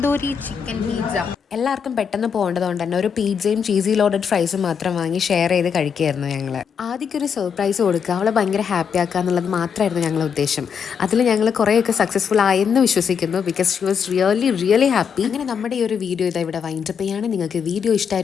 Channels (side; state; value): right; quieter; 6.9 dB